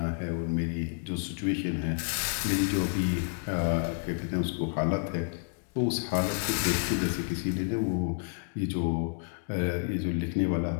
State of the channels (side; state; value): right; silent; digital silence